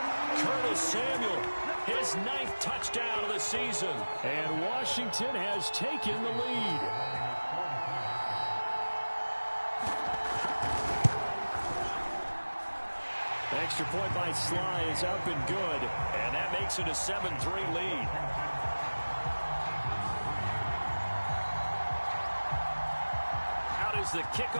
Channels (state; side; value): inverted; both; correlation -1.00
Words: Curtis Samuel, his 9th touchdown of the season. And Washington has taken the lead. Extra point by Sly is up and good. And that makes it a 7-3 lead. Out is the